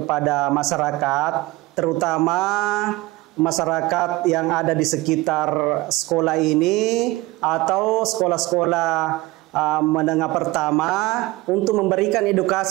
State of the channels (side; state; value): left; quieter; 20.4 dB